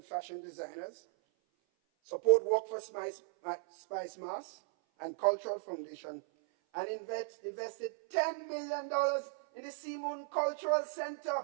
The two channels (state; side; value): silent; left; 54 dB below the other